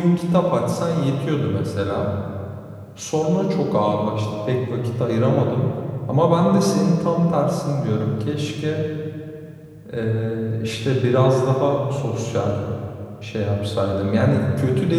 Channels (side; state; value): both; identical; correlation 1.00